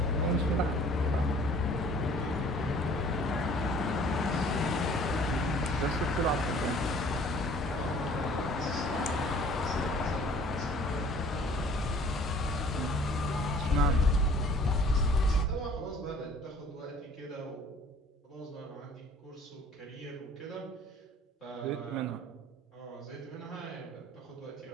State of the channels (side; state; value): both; normal; correlation 0.52